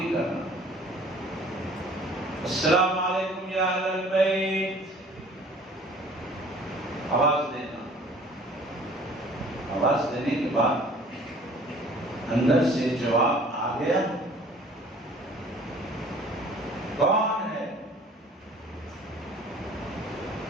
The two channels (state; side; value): normal; both; correlation 0.51